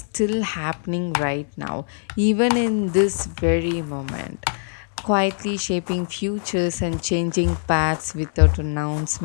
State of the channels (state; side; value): silent; right; 64 dB below the other